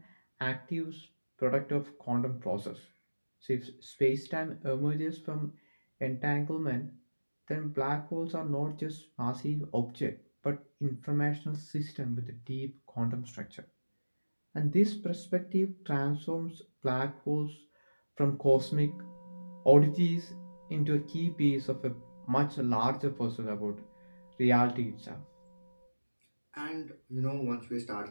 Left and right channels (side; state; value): both; inverted; correlation -1.00